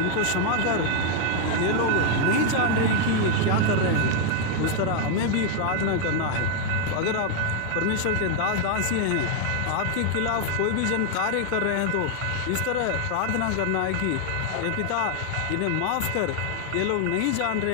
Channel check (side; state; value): both; different; correlation 0.00